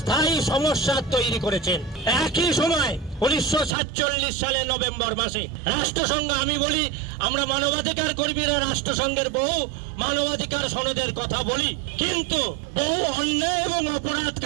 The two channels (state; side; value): drops out; left; at 3.8 s